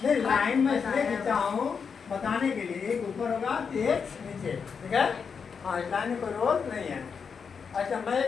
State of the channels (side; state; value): right; quieter; 6.1 dB